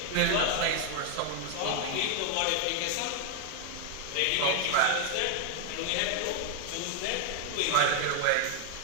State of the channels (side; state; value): both; different; correlation 0.00